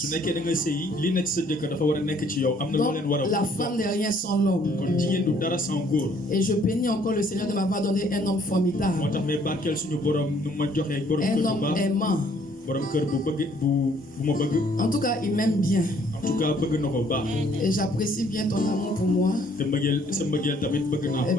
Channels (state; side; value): normal; both; correlation 0.62